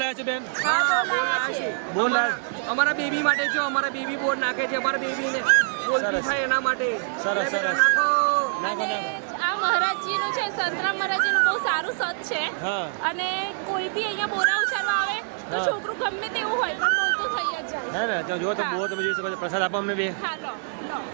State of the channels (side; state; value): left; silent; digital silence